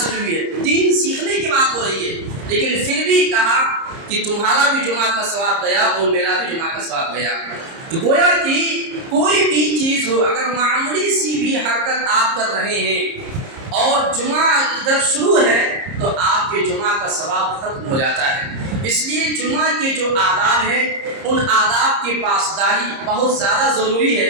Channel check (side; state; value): left; late; 30 ms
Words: ہوئی ہے، دین سیکھنے کی بات ہو رہی ہے، لیکن پھر بھی کہا کہ تمہارا بھی جمعہ کا ثواب گیا اور میرا بھی جمعہ کا ثواب گیا۔ تو گویا کہ کوئی بھی چیز ہو، اگر معمولی سی بھی حرکت آپ کر رہے ہیں اور جمعہ ادھر شروع ہے تو آپ کے جمعہ کا ثواب ختم ہو جاتا ہے۔ اس لیے جمعہ کے جو آداب ہیں ان آداب کی پاسداری بہت زیادہ ضروری ہے